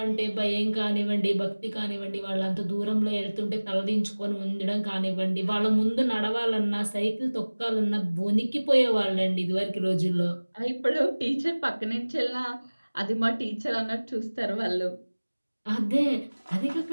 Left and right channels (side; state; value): both; inverted; correlation -1.00